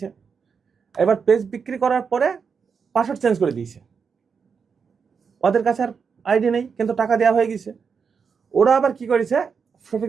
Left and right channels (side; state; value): left; quieter; 6.0 dB